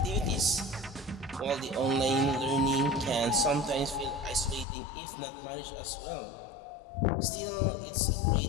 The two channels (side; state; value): right; drops out; at 4.7 s